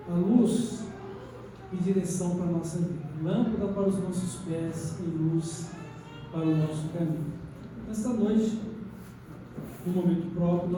a luz e direção para a nossa vida, lâmpada para os nossos pés e luz para o nosso caminho. Nesta noite, no momento próprio,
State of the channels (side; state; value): both; identical; correlation 1.00